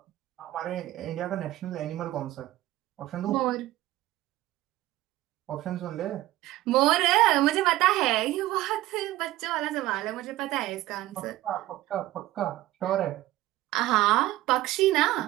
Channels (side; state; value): left; quieter; 16.3 dB